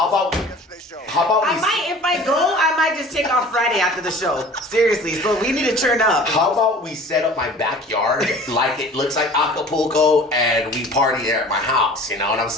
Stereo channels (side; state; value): both; normal; correlation 0.44